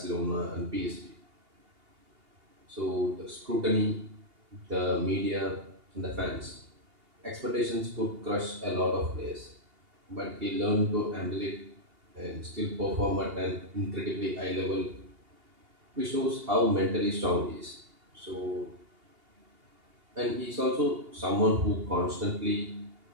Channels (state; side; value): late; left; 2.8 ms